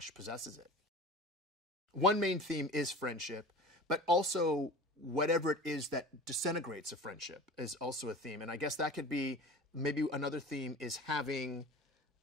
possesses it. One main theme is friendship, but also whatever it is that disintegrates a friendship is also a theme. And I guess that could be, maybe another theme is having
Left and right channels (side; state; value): both; normal; correlation 0.37